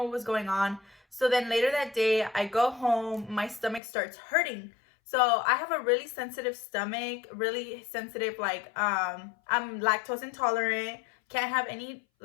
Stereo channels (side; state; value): right; drops out; at 3.8 s